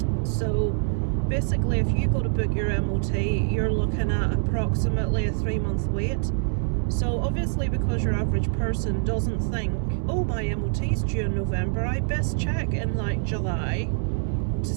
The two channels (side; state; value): left; silent; digital silence